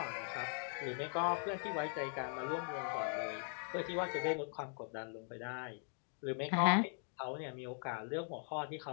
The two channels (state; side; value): silent; right; 51 dB below the other